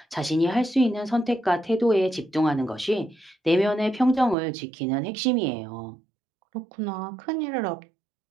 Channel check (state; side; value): drops out; left; at 4.4 s